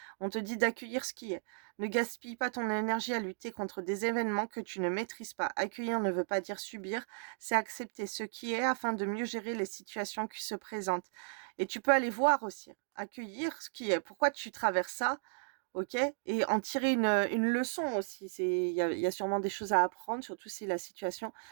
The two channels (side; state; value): left; silent; digital silence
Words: on te dit d'accueillir ce qui est. Ne gaspille pas ton énergie à lutter contre des événements que tu ne maîtrises pas. Accueillir ne veut pas dire subir, c'est accepter ce qui est afin de mieux gérer les situations qui se présentent. Et tu peux aller voir aussi, accueillir ce qui est. Pourquoi tu traverses ça? OK? Et en tirer une leçon aussi. Il y a sûrement des choses à apprendre, surtout si la situation